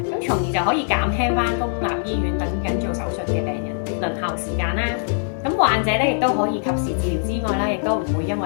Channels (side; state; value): right; silent; digital silence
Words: 咁從而就可以減輕翻公立醫院等緊做手術嘅病人輪候時間啦。咁患者咧亦都可以及時治療之外啦，亦都唔會因